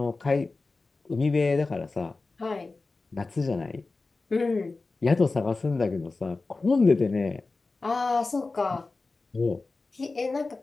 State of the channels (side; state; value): right; quieter; 3.7 dB